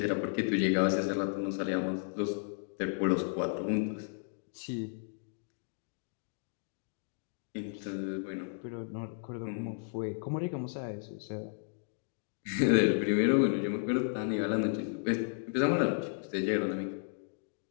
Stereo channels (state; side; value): silent; right; digital silence